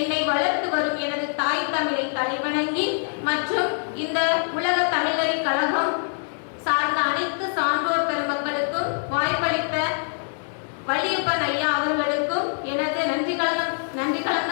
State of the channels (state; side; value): silent; right; 58 dB below the other